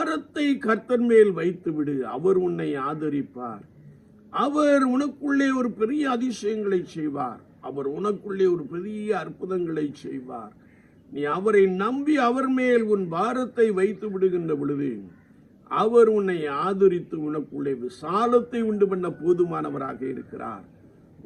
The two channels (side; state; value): both; identical; correlation 1.00